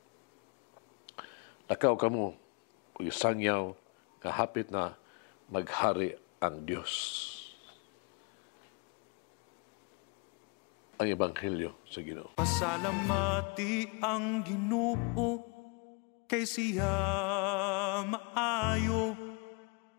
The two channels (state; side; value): quieter; right; 33.2 dB